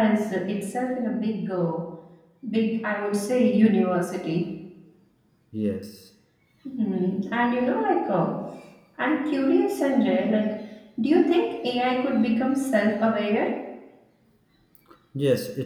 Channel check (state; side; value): identical; both; correlation 1.00